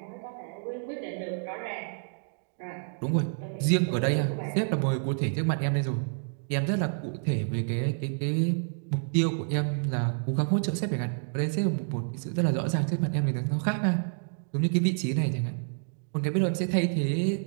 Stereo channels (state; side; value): silent; left; digital silence